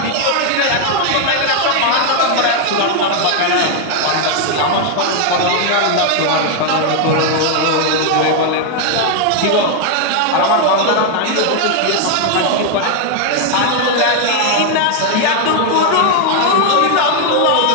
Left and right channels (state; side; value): different; both; correlation 0.00